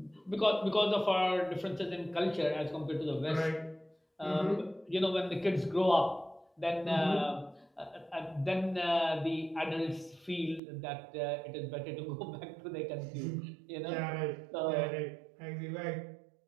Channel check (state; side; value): drops out; left; at 10.6 s